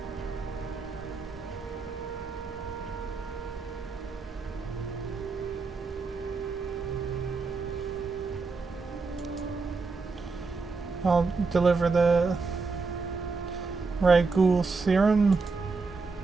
I'll deliver the Ragoul serum.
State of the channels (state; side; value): quieter; left; 4.3 dB